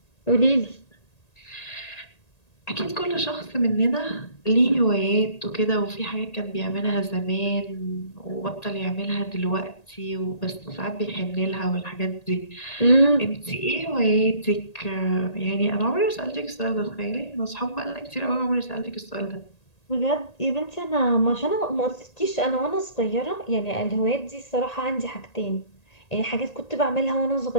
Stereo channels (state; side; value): late; right; 1.8 ms